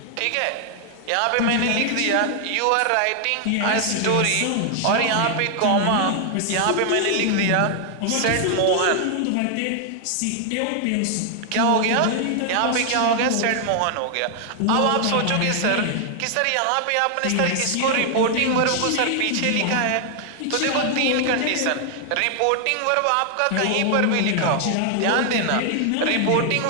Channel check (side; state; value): both; different; correlation 0.00